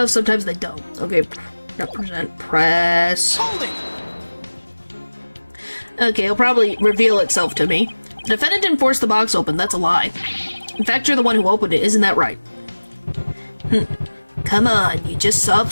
sometimes they don't. Okay, represent, press. Hold it! Okay, it'll probably reveal itself to me. The defendant didn't force the box open, that's a lie. In fact, you're the one who opened it, isn't that right? Come on, you just saw it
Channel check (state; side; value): inverted; both; correlation -1.00